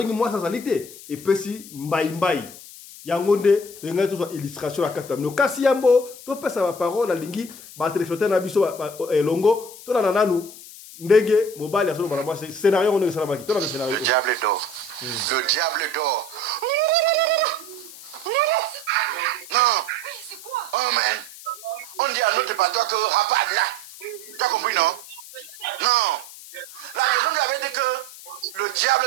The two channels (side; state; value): left; noise; hiss, 16 dB below the sound